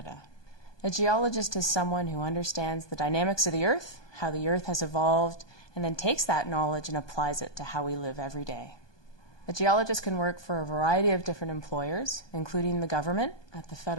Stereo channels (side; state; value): right; late; 1.2 ms